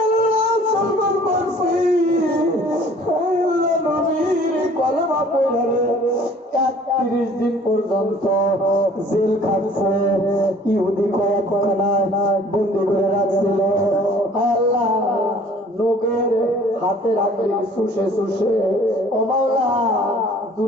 আল্লাহ সলমান ফার্সি আয় আল্লাহ নবীর কলমা পড়ে 31 দিন পর্যন্ত জেল খাটছে ইহুদি কয়েকখানায় বন্দি করে রাখছিল আল্লাহ লোকের হাতে রাখলে শুষে শুষে ও মাওলা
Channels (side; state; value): both; normal; correlation 0.53